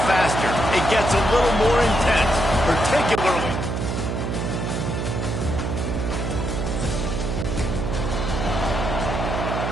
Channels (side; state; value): right; noise; hum, 2 dB below the sound